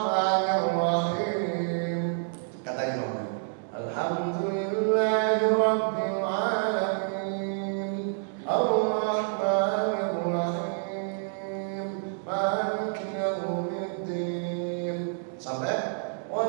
Kata imam, Alhamdulillahi Rabbil Alamin, Ar-Rahmanirrahim, Maliki Yawmiddin. Sampai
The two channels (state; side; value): silent; left; digital silence